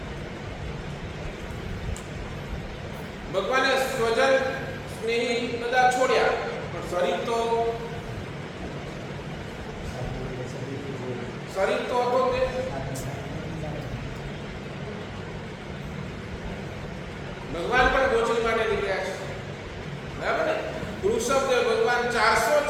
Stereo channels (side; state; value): both; identical; correlation 1.00